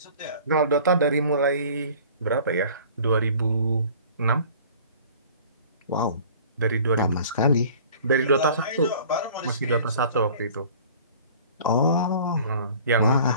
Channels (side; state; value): both; inverted; correlation -0.48